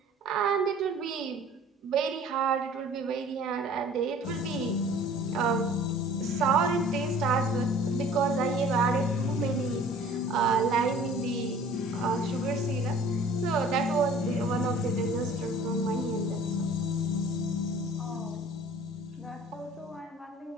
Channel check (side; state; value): both; normal; correlation 0.49